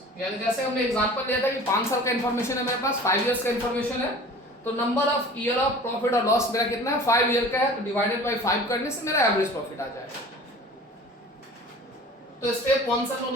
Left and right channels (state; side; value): normal; both; correlation 0.43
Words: यानी जैसे हमने एग्जांपल लिया था कि 5 साल का इंफॉर्मेशन है मेरे पास, 5 इयर्स का इंफॉर्मेशन है, तो number of year of profit और लॉस मेरा कितना है, 5 ईयर का है, तो डिवाइडेड बाय 5 करने से मेरा एवरेज प्रॉफिट आ जाएगा। तो स्टेप 1 से हम लोग